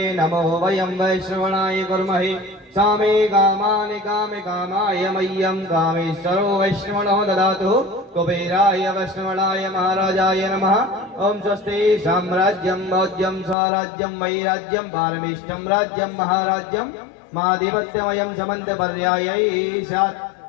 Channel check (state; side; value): drops out; right; at 13.6 s